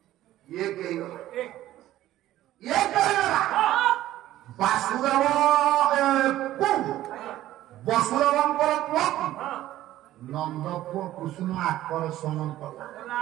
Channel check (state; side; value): quieter; left; 14.2 dB